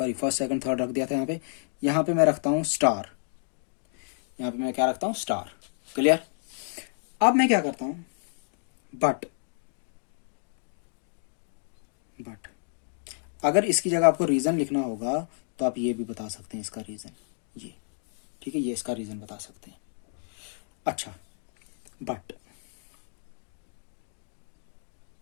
फर्स्ट सेकंड थर्ड रख दिया था यहाँ पे मैं रखता हूँ स्टार, यहाँ पे मैं क्या रखता हूँ, स्टार। क्लियर। अब मैं क्या करता हूँ, बट अगर इसकी जगह आपको रीजन लिखना होगा तो आप ये भी बता सकते हैं इसका रीजन, ये ठीक है, ये इसका रीजन बता सकते हैं। अच्छा, बट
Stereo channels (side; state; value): right; silent; digital silence